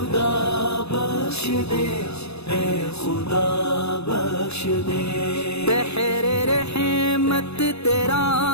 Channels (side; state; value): right; late; 0.79 ms